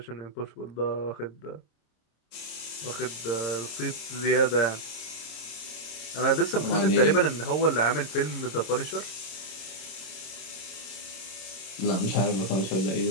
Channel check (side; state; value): right; late; 26 ms